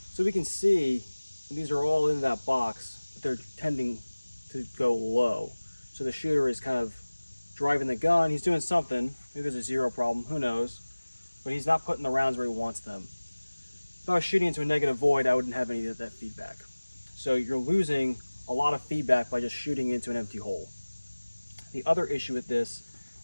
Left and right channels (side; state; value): both; inverted; correlation -1.00